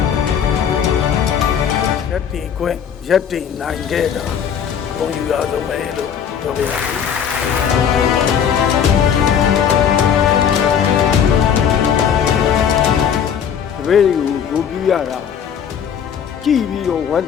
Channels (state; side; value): quieter; right; 8.1 dB